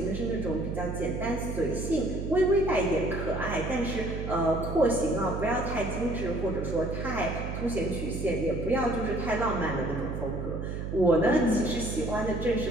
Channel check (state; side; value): noise; right; hum, 5 dB below the sound